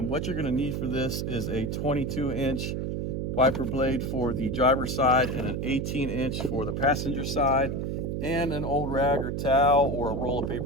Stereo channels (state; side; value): noise; right; hum, 2 dB below the sound